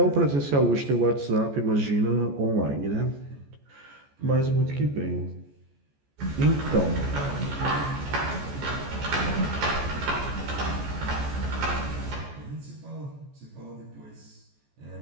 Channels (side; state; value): left; late; 14 ms